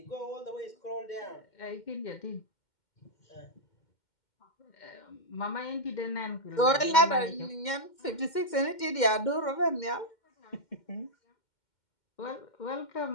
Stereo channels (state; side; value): late; right; 2.1 ms